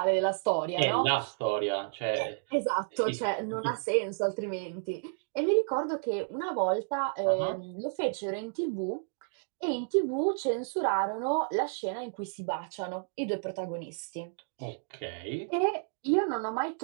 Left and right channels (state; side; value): silent; left; digital silence